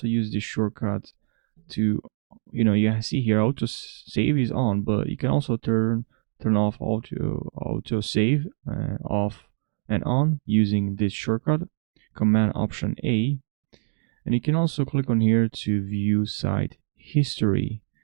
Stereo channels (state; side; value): silent; left; 62 dB below the other